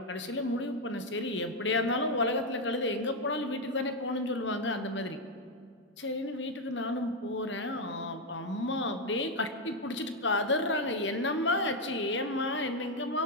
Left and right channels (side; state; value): both; normal; correlation 0.04